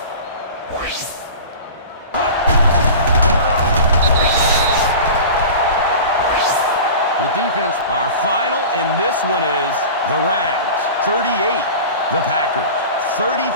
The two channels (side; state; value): both; inverted; correlation -0.35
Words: The defense... Our final in this one is the Rams 38, the Packers